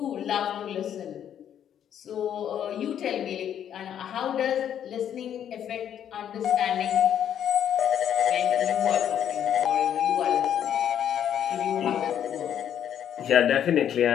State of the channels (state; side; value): quieter; right; 9.6 dB